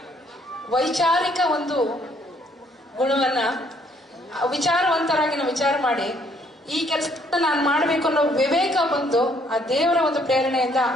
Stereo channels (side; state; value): both; normal; correlation 0.66